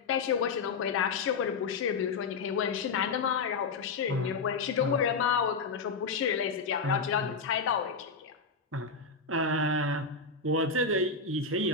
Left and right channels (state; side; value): quieter; right; 4.5 dB